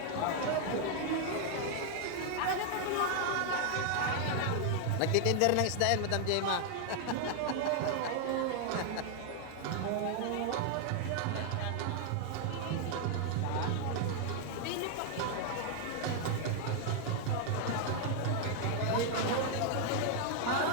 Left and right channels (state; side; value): different; both; correlation 0.00